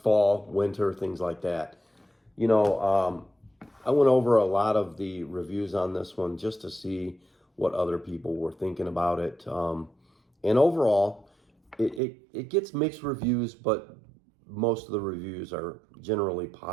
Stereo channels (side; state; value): left; drops out; at 12.0 s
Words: fall, winter, things like that. I went over a lot of the reviews on this one just to see what other people were thinking about it. And overall, it gets mixed reviews, but most of the reviews are generally